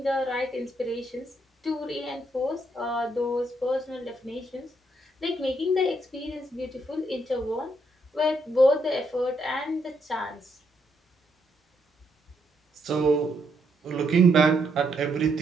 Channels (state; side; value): normal; both; correlation 0.76